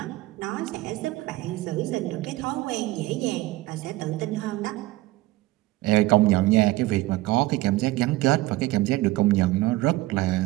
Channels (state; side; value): quieter; left; 18.2 dB